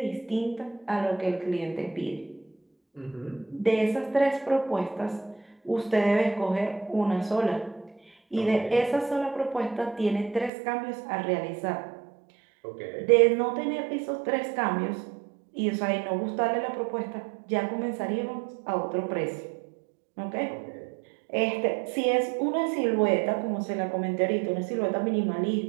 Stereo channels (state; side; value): drops out; left; at 10.5 s